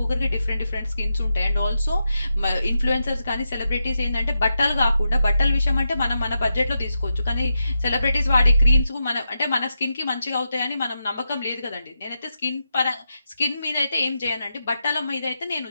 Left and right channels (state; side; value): inverted; both; correlation -0.87